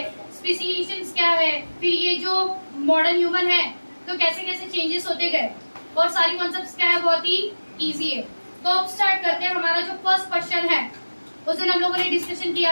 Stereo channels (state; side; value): inverted; both; correlation -1.00